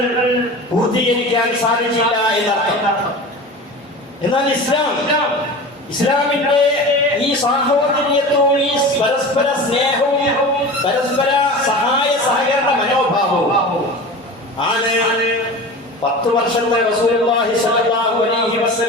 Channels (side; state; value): both; normal; correlation 0.33